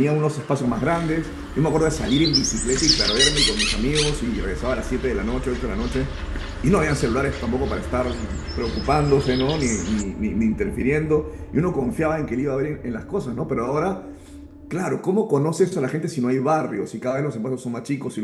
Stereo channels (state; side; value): identical; both; correlation 1.00